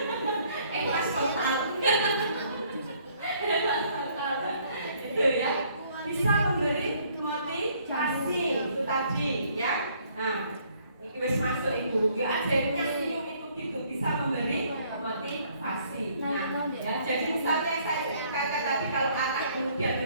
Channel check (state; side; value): inverted; both; correlation -0.63